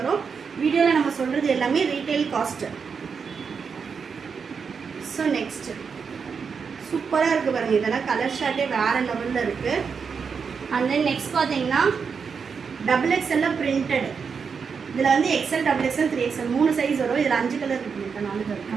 வீடியோவில் நம்ம சொல்கிறது எல்லாமே ரீட்டைல் காஸ்ட்டு. ஸோ நெக்ஸ்ட்டு சூப்பராக இருக்குது பாருங்கள், இதெல்லாம் கலர் ஷார்ட்டே வேறு லெவலில் இருக்குது. அண்ட் தென் நெக்ஸ்ட் பார்த்தீங்கன்னா XXL பிரிண்டட். இதில் வந்து XL, XXL, 3XL 3 சைஸ் வரும். இதில் 5 கலர் இருக்குது, 4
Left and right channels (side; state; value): left; quieter; 5.9 dB